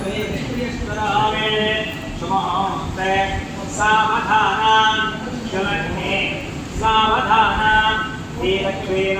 సుమహోస్తే సావధానం శలగ్నే సావధానం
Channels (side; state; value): both; identical; correlation 1.00